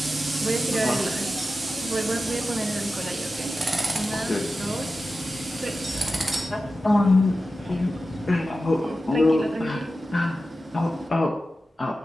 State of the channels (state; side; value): normal; both; correlation 0.93